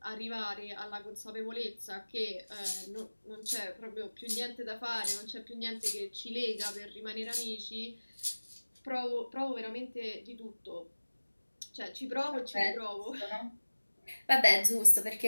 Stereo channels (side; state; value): both; inverted; correlation -1.00